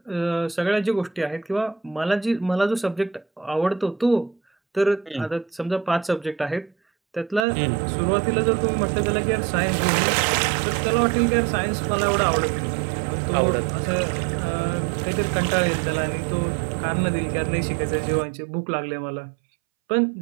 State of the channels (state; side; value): drops out; left; at 7.5 s